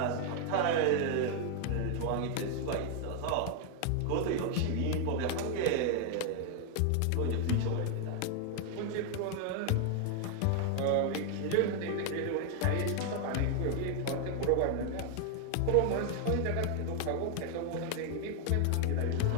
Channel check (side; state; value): both; different; correlation 0.00